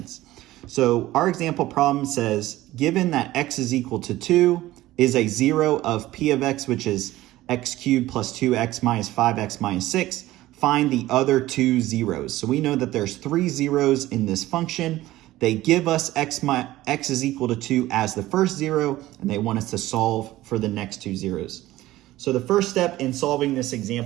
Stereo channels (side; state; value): left; quieter; 16.3 dB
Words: So our example problem says, given that x is equal to 2 is a 0 of p of x, which is x cubed plus 2x minus 5x minus 6, find the other two zeros. So we know that there's 3 zeros in this function. They give us x is equal to 2 as the first 0, and they want us to solve for the next 2 zeros. So the first step in solving this